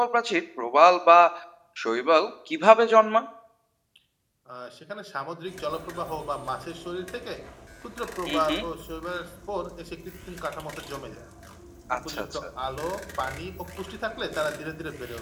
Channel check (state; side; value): identical; both; correlation 1.00